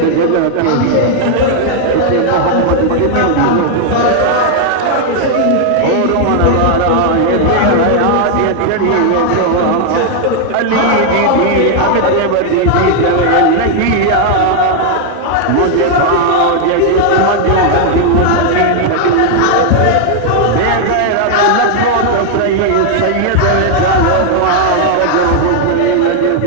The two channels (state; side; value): different; both; correlation 0.00